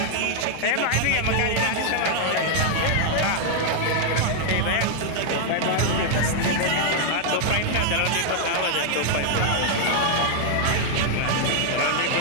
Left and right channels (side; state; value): both; different; correlation 0.00